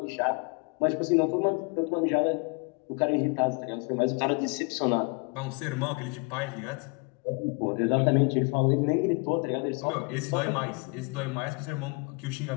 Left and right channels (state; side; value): quieter; right; 32.5 dB